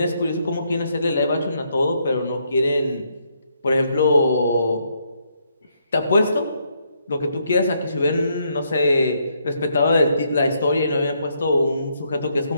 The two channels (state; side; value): inverted; both; correlation -0.74